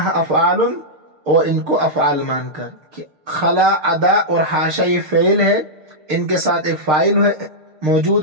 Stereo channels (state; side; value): late; left; 6.6 ms